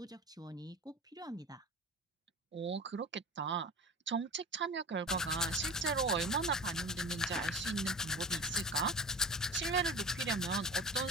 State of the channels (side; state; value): both; normal; correlation 0.33